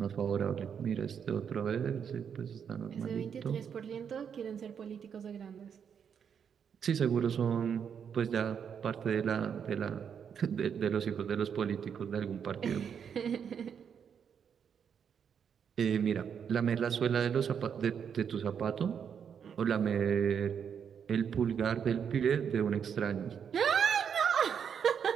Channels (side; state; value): left; quieter; 7.5 dB